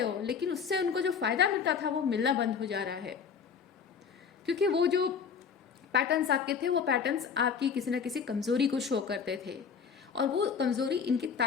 हो, लेकिन उससे उनको जो फायदा मिलता था वो मिलना बंद हो जा रहा है, क्योंकि वो जो पैटर्न्स आपके थे वो पैटर्न्स आपकी किसी ना किसी कमजोरी को शो करते थे, और वो कमजोरी इनकी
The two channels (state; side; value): quieter; right; 6.5 dB